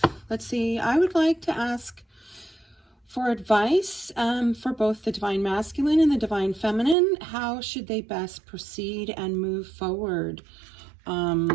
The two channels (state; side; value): drops out; left; at 7.0 s